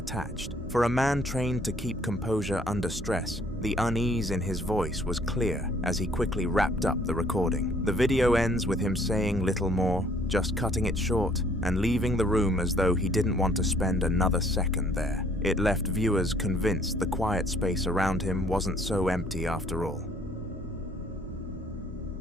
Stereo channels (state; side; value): normal; both; correlation 0.61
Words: For a man trained to keep composure under stress, the unease in his voice was clear as he quickly wrapped up the recording. The video ends with him saying little more, just cutting it short and leaving the room as though he didn't want to spend another second there. It left viewers convinced the quiet space around him wasn't so empty after all.